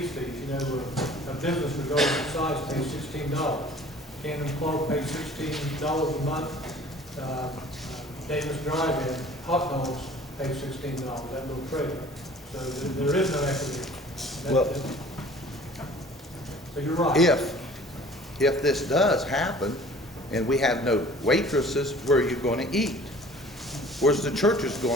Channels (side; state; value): both; normal; correlation 0.49